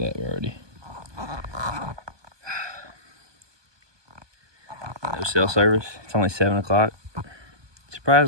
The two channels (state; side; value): late; left; 1.2 ms